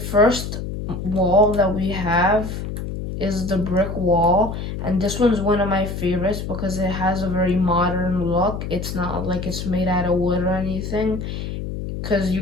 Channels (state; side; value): noise; left; hum, 6 dB below the sound